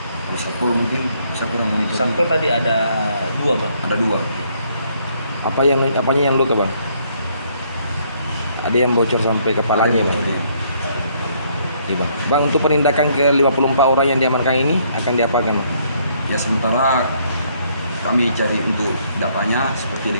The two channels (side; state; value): both; inverted; correlation -0.68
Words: Kalau Satpol mungkin saya kurang monitor. Satpol tadi ada 2 bang. Ada 2. Apanya yang luka bang? Ada yang bocor sampai kepalanya bang? Iya bang. Bang, untuk penindakan ke 54 orang yang diamankan ini akan diapakan? Ya sementara kami cari untuk datanya seperti